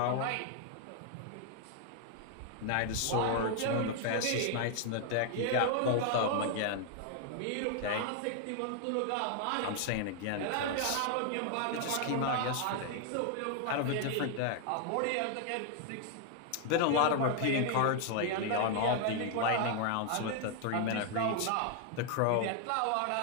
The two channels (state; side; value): different; both; correlation 0.00